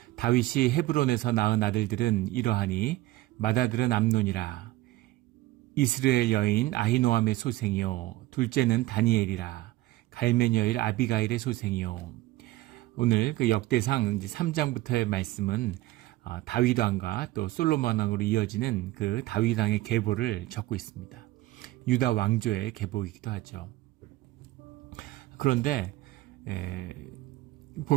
다윗이 헤브론에서 낳은 아들들은 이러하니 맏아들은 암논이라, 이스라엘 여인 아히노함의 소생이요, 둘째는 다니엘이라, 갈멜 여인 아비가일의 소생이요. 오늘 그 역대상 3장부터의 말씀은 다윗 왕과 또 솔로몬 왕으로 이어지는 그 다윗 왕의 계보를 적고 있습니다. 유다 왕조의 계보이기도 하죠. 그런데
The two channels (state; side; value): quieter; left; 17.2 dB